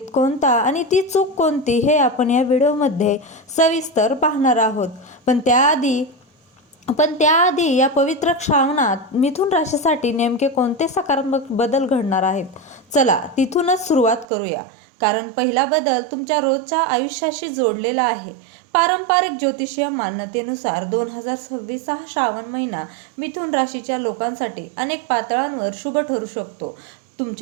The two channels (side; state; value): left; drops out; at 14.2 s